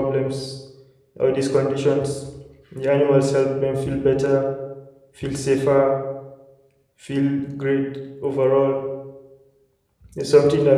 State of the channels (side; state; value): both; identical; correlation 1.00